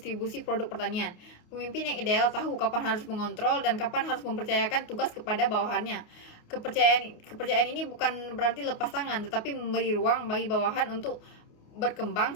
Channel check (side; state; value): right; late; 28 ms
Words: produk pertanian. Pemimpin yang ideal tahu kapan harus mengontrol dan kapan harus mempercayakan tugas kepada bawahannya. Kepercayaan ini bukan berarti lepas tangan, tetapi memberi ruang bagi bawahan untuk berkembang